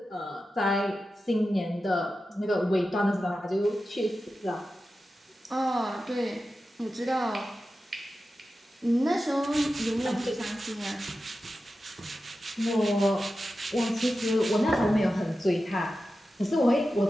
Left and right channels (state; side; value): normal; both; correlation 0.92